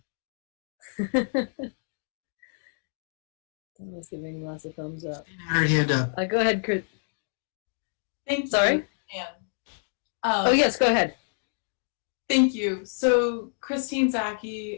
Someone's giving lots of thumbs up. Her hand up. Go ahead, Chris. Thank you. Sorry? Anne. Oh, yes, go ahead. Thank you. So, Christine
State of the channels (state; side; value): silent; right; digital silence